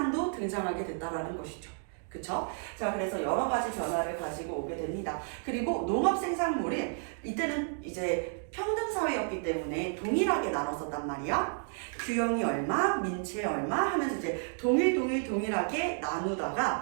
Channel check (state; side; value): silent; left; 57 dB below the other